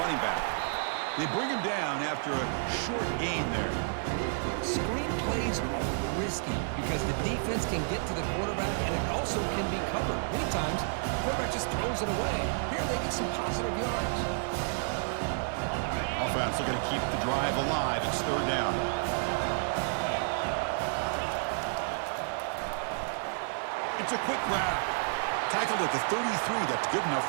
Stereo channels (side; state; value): left; silent; digital silence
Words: running back. They bring him down after a short gain there. Screen plays are risky because the defense can get to the quarterback, and it also can be covered. Many times, the quarterback just throws it away. Here they get some positive yards. Offense looking to keep the drive alive. It's third down. It's a quick grab. Tackled at the 33. That's good enough